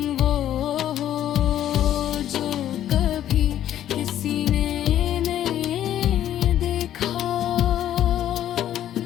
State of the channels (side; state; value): right; quieter; 11.5 dB